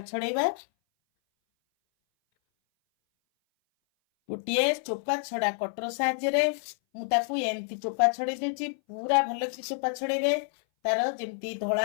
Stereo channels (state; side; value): silent; right; 58 dB below the other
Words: ଛଡେଇବା। ଗୋଟିଏ ଚୋପା ଛଡା କଟର ସାହାଯ୍ୟରେ ମୁଁ ତାକୁ ଏମିତି ଚୋପା ଛଡେଇ ଦେଉଛି। ପୁରା ଭଲକି ଚୋପା ଛଡେଇବେ, ତାର ଯେମିତି ଧଳା